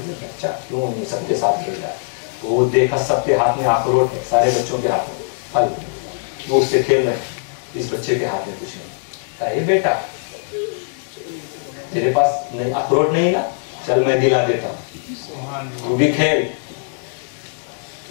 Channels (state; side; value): silent; right; digital silence